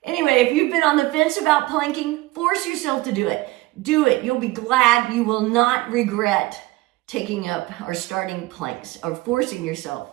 Anyway, if you've been on the fence about planking, force yourself to do it. Do it. You'll be glad. You will not regret taking up or starting planks or forcing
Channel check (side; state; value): left; quieter; 19.7 dB